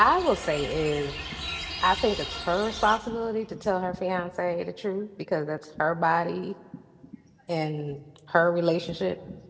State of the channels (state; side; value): identical; both; correlation 1.00